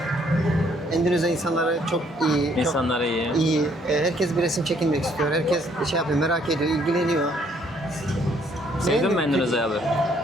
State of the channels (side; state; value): both; normal; correlation 0.66